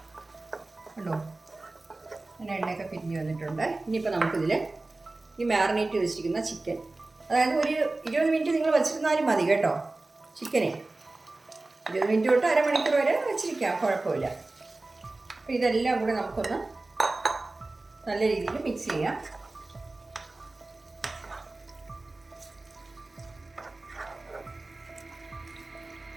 കണ്ടോ, അങ്ങനെ എണ്ണയൊക്കെ പിരിഞ്ഞ് വന്നിട്ടുണ്ട്. ഇനിയിപ്പോൾ നമുക്കിതിൽ ഈ മാറിനേറ്റ് വെച്ചിരിക്കുന്ന ചിക്കൻ, അതായത് ഒരു 20 മിനിറ്റ് നിങ്ങൾ വെച്ചിരുന്നാലും മതി കേട്ടോ. ചിക്കനെ 20 മിനിറ്റ് തൊട്ട് അരമണിക്കൂർ വരെ വെച്ചിരിക്കാം, കുഴപ്പമില്ല. അപ്പോൾ ഇതെല്ലാം കൂടെ നമുക്കൊന്ന് നല്ല രീതിയിൽ മിക്സ് ചെയ്യാം.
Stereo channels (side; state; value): left; quieter; 3.1 dB